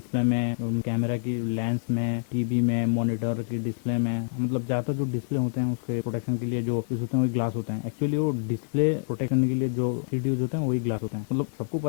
में, कैमरा की लेंस में, टीवी में, मॉनिटर की डिस्प्ले में, मतलब ज़्यादातर जो डिस्प्ले होते हैं उसके प्रोटेक्शन के लिए जो यूज होते हैं वही ग्लास होते हैं। एक्चुअली वो डिस्प्ले प्रोटेक्ट करने के लिए जो शीट यूज होते हैं वही ग्लास होते हैं। मतलब सबको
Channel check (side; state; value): right; silent; digital silence